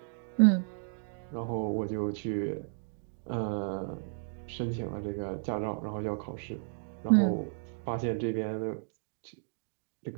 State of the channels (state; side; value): silent; left; digital silence